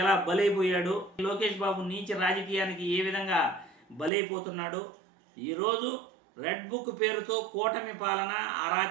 ఎలా బలైపోయాడు, లోకేష్ బాబు నీచ రాజకీయానికి ఏ విధంగా బలైపోతున్నాడు. ఈరోజు రెడ్ బుక్ పేరుతో కూటమి పాలన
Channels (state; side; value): drops out; left; at 4.1 s